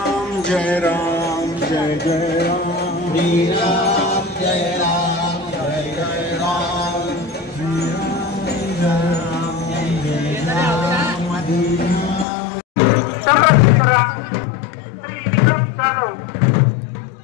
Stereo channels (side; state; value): right; drops out; at 12.2 s